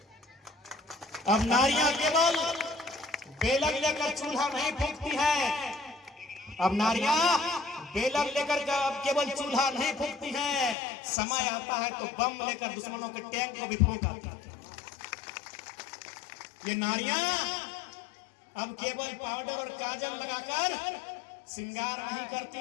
अब नारियां केवल बेलक लेकर चूल्हा नहीं फूंकती है। अब नारियां बेलक लेकर केवल चूल्हा नहीं फूंकती हैं। समय आता है तो बम लेकर दुश्मनों के टैंक को भी फूंक आती है। ये नारियां अब केवल पाउडर और काजल लगाकर श्रृंगार नहीं करती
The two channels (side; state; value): right; drops out; at 10.8 s